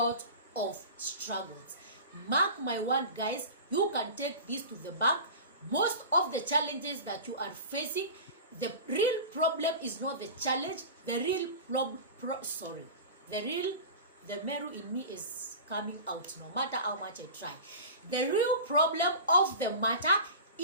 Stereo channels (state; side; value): inverted; both; correlation -0.33